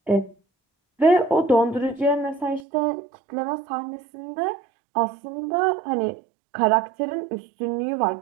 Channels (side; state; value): left; drops out; at 2.7 s